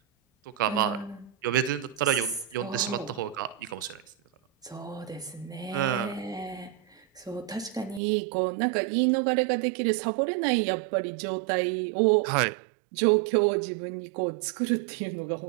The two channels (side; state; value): left; drops out; at 8.0 s